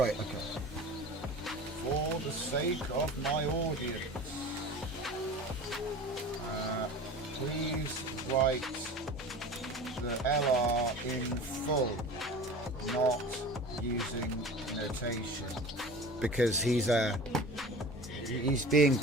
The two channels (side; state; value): both; normal; correlation 0.37